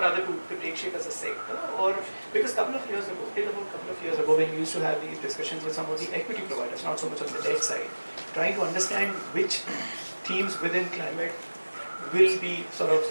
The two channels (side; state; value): both; inverted; correlation -1.00